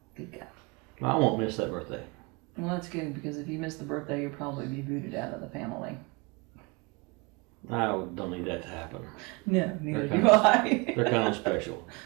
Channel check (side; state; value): left; quieter; 28.3 dB